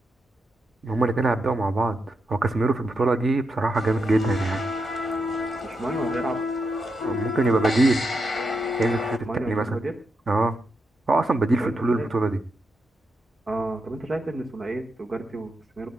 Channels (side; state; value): both; normal; correlation 0.84